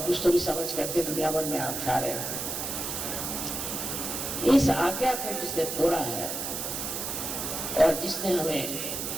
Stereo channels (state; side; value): noise; right; hiss, 4 dB below the sound